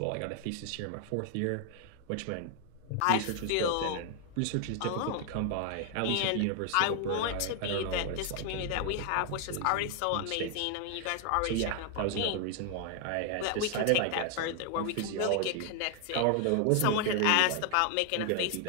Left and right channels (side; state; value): both; different; correlation 0.00